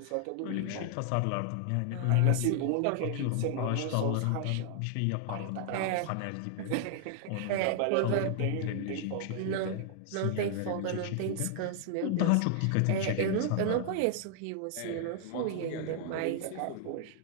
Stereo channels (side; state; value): both; different; correlation -0.01